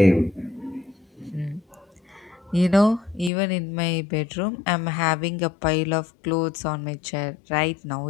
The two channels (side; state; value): right; drops out; at 3.3 s